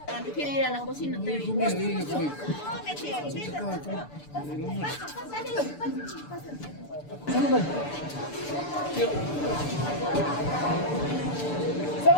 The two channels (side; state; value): right; late; 6.9 ms